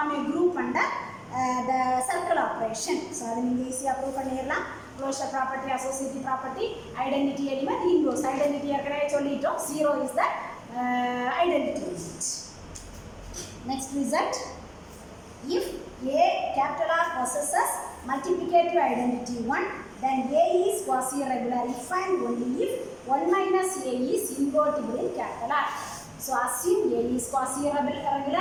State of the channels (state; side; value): identical; both; correlation 1.00